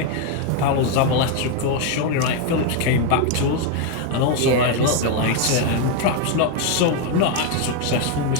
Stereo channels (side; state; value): both; different; correlation 0.01